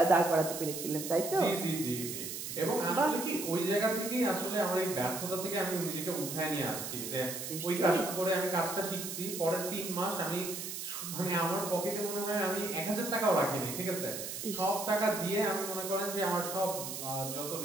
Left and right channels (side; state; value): right; noise; hiss, 6 dB below the sound